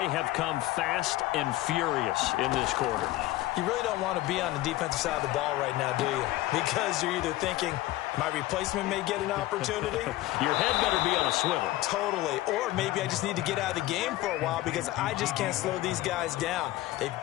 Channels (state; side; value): quieter; right; 16.7 dB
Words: have come fast and furious in this quarter. You really don't want to be on the defensive side of the ball right now, do you? Because you're either thinking, my replacement may get an opportunity. Your head better be on a swivel. Totally. Or maybe I just need to get out of the game for a while because I just can't slow these guys down. They've